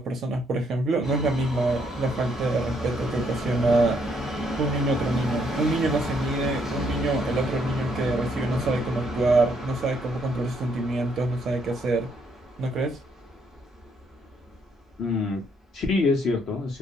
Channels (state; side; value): normal; both; correlation 0.72